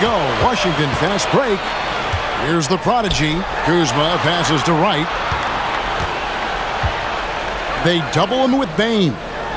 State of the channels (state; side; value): identical; both; correlation 1.00